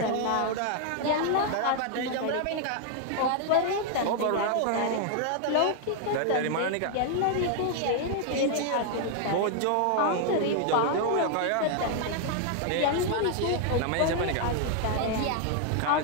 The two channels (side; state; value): both; different; correlation 0.00